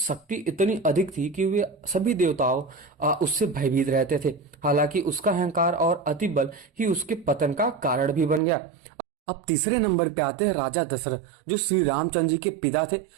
इतनी अधिक थी कि वे सभी देवताओं उससे भयभीत रहते थे। हालांकि उसका अहंकार और अति बल ही उसके पतन का कारण भी बन गया। अब तीसरे नंबर पे आते हैं राजा दशरथ, जो श्री रामचंद्र जी के पिता थे।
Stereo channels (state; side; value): drops out; left; at 8.4 s